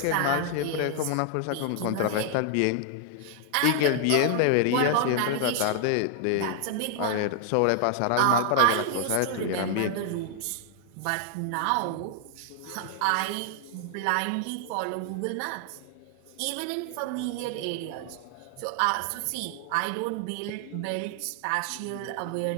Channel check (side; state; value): both; different; correlation 0.00